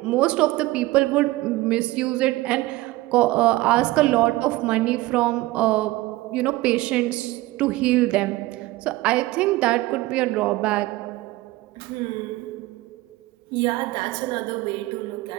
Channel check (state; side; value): quieter; left; 18.8 dB